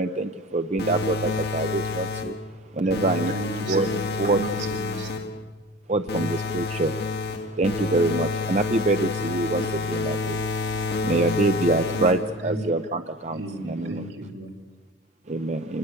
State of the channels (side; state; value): both; normal; correlation 0.37